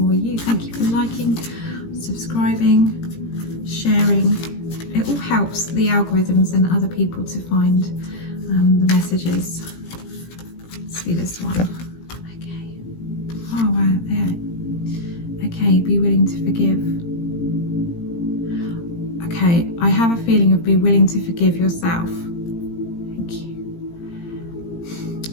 you. Thank you for liking, subscribing, sharing. It all helps the algorithms and other people to find the messages. Let's see this one. Okay. Oh, wow. Yeah. Okay, be willing to forgive. Okay, I have a feeling of be willing to forgive yourself. Thank you.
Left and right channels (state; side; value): late; right; 17 ms